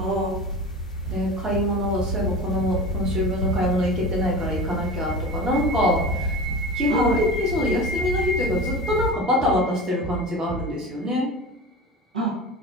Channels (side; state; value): both; normal; correlation 0.32